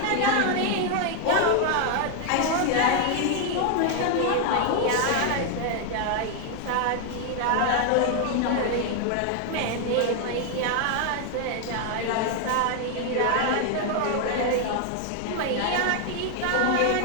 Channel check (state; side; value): different; both; correlation 0.00